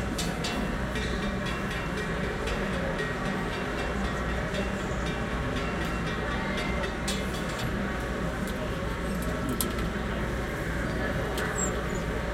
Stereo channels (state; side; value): identical; both; correlation 1.00